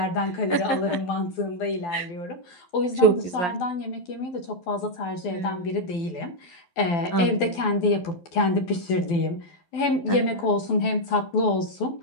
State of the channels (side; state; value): right; late; 12 ms